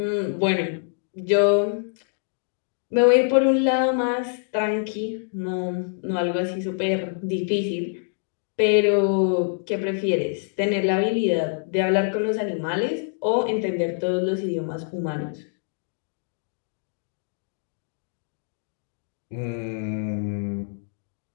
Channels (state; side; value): silent; right; digital silence